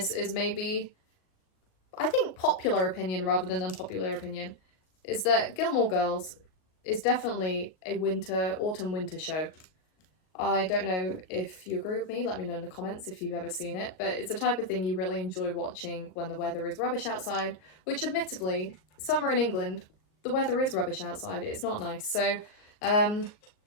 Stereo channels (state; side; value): late; right; 38 ms